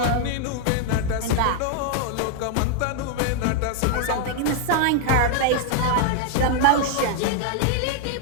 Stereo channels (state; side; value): different; both; correlation 0.00